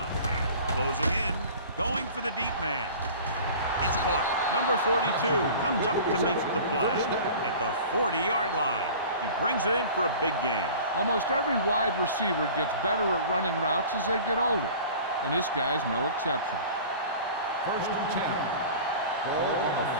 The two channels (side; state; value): both; inverted; correlation -0.41